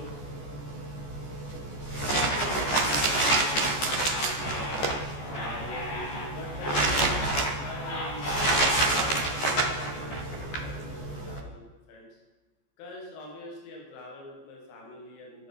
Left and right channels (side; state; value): right; late; 14 ms